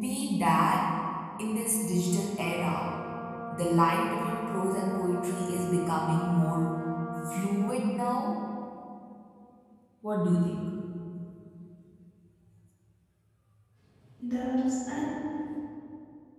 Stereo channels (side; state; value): both; identical; correlation 1.00